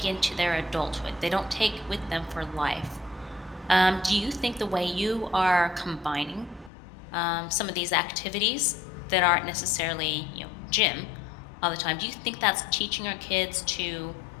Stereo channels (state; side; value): drops out; right; at 6.7 s